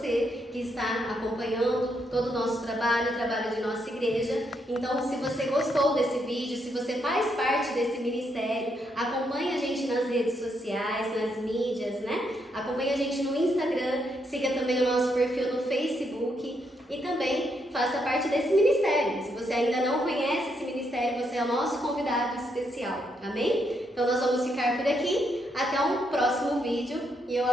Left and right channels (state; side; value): normal; both; correlation 0.77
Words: que está acompanhando todo o nosso trabalho, o trabalho de nossa igreja. Então, se você gostou desse vídeo, se você faz parte desse ministério, acompanhe a gente nas redes sociais, nas mídias, né? Acompanhe a gente no Instagram, siga também o nosso perfil no Facebook e também faça parte desse ministério. Se você ainda não conhece esse ministério, você é o nosso convidado especial, amém? Então nós vamos ficar por aqui, até um próximo vídeo, e eu